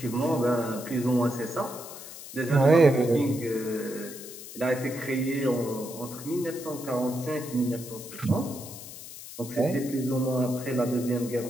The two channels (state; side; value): noise; left; hiss, 13 dB below the sound